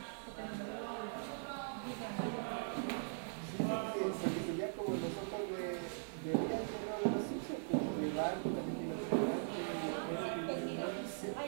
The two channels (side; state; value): left; silent; 51 dB below the other